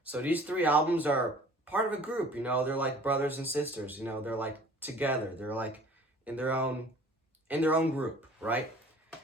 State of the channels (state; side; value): normal; both; correlation 0.49